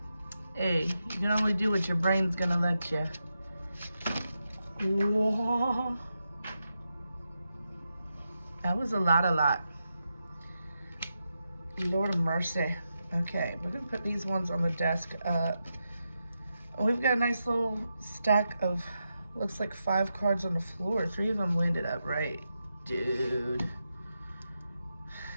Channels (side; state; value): both; inverted; correlation -0.87